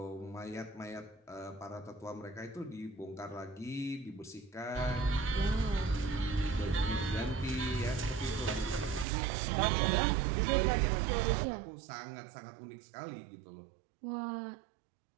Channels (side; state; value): left; drops out; at 9.1 s